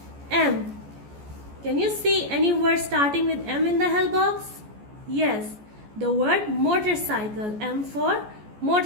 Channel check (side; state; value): left; late; 14 ms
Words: M. Can you see any word starting with M in the help box? Yes, the word motorcycle, M for